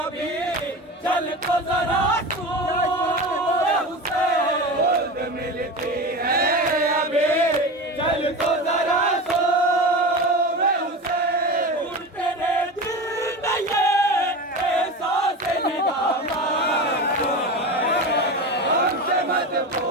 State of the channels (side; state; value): both; normal; correlation 0.27